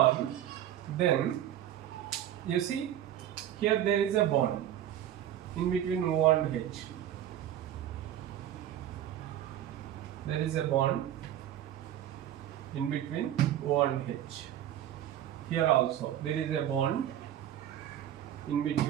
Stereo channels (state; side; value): quieter; left; 11.4 dB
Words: then you see here there is a bond in between O and H. There is a bond in between O and H. Here also there is a bond in